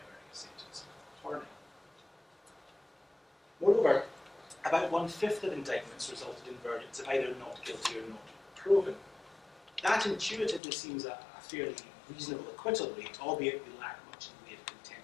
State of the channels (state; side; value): drops out; right; at 10.6 s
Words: a sentence of torning. Moreover, about 1/5 of indictments resulted in verdicts of either not guilty or not proven. That intuitively seems a fairly reasonable acquittal rate, albeit we lack much in the way of